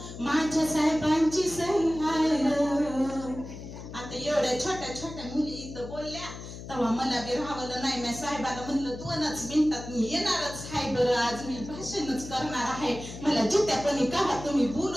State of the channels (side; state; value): left; noise; hum, 12 dB below the sound